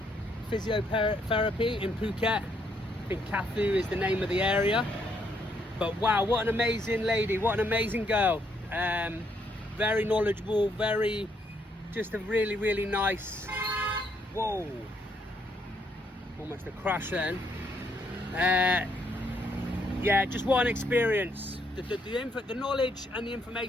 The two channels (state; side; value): normal; both; correlation 0.73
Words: Physiotherapy in Phuket. I think Kathu is the name of the area. But wow, what an amazing lady, what an amazing girl. Very knowledgeable, just a really nice, whoa, almost a crash then. Yeah, just what an experience. The knowledge and the